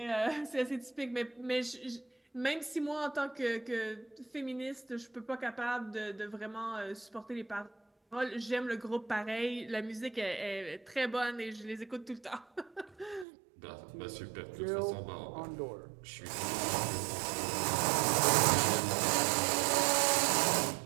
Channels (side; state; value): left; drops out; at 13.2 s